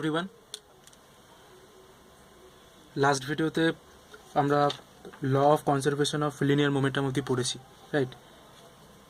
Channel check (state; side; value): identical; both; correlation 1.00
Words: last ভিডিওতে আমরা law of conservation of linear momentum অবধি পড়েছি, রাইট?